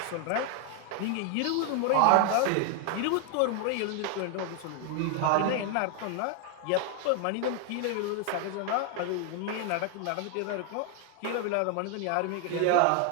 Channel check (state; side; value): different; both; correlation 0.00